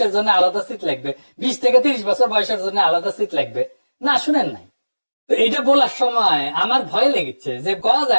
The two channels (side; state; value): both; inverted; correlation -1.00